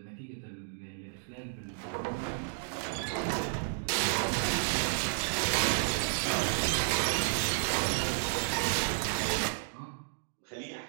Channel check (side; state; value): left; silent; digital silence